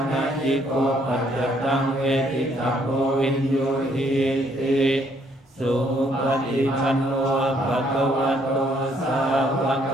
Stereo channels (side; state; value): both; normal; correlation 0.68